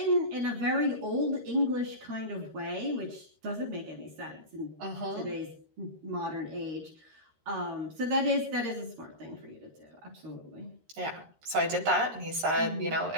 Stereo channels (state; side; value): late; left; 13 ms